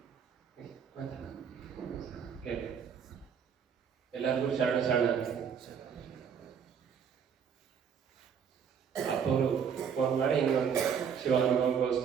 ಎಲ್ಲರಿಗೂ ಶರಣ ಅಪ್ಪವರು ಫೋನ್ ಮಾಡಿ ಹಿಂಗೊಂದು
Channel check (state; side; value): quieter; left; 7.3 dB